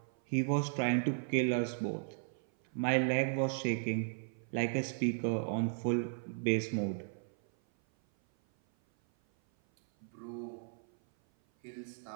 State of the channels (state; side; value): silent; left; 54 dB below the other